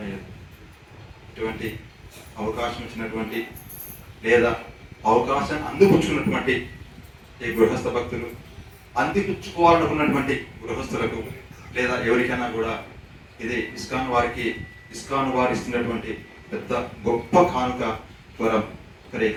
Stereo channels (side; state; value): both; identical; correlation 1.00